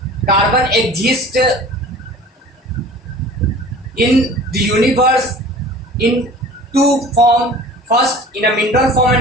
Carbon exists in the universe in two forms. First in a mineral form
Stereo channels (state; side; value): normal; both; correlation 0.43